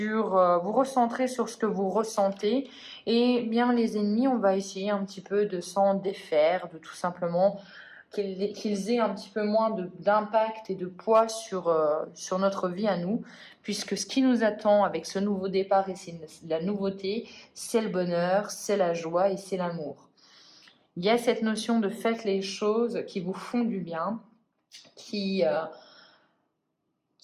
vous recentrer sur ce que vous ressentez. Et bien, les ennemis, on va essayer un petit peu de s'en défaire, de tout simplement qu'ils aient un petit peu moins d'impact et de poids sur notre vie à nous, puisque ce qui nous attend avec ce nouveau départ et c'est la nouveauté, c'est le bonheur, c'est la joie et c'est l'amour. Il y a cette notion de faites les choses qui vous font du bien, qui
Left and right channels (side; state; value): both; identical; correlation 1.00